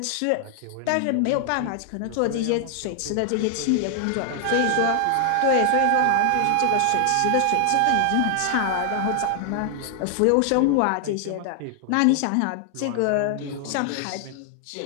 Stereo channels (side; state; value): both; different; correlation 0.00